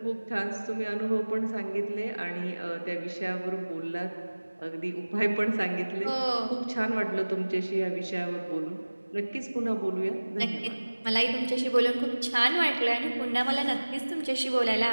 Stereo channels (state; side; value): inverted; both; correlation -1.00